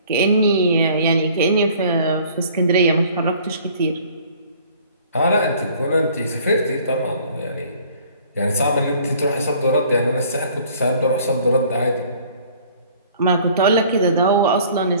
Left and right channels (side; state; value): both; inverted; correlation -0.54